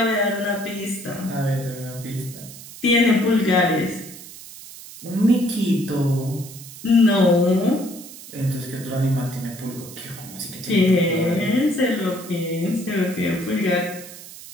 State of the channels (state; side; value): noise; right; hiss, 15 dB below the sound